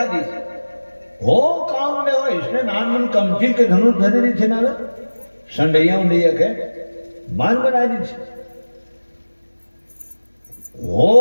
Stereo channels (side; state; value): both; inverted; correlation -1.00